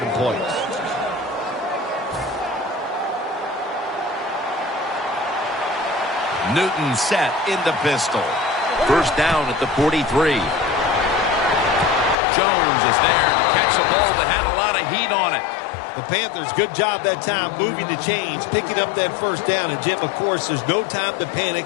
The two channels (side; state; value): right; drops out; at 12.2 s